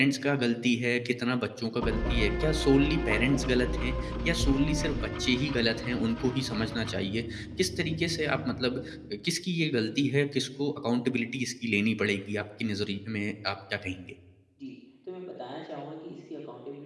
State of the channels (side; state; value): both; identical; correlation 1.00